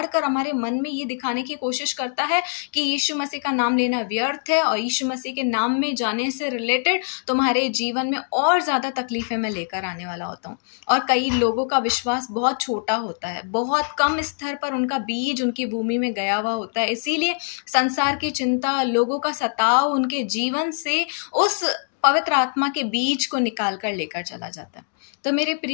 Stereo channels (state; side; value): silent; right; digital silence